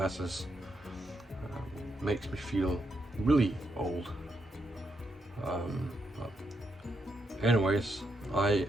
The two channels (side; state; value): both; normal; correlation 0.80